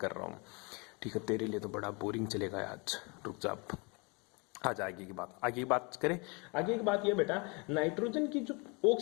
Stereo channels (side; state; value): right; quieter; 30.4 dB